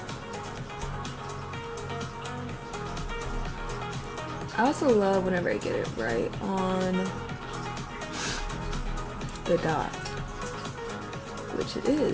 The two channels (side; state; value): both; identical; correlation 1.00